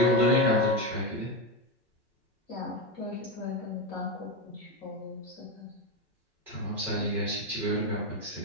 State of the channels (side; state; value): both; normal; correlation 0.12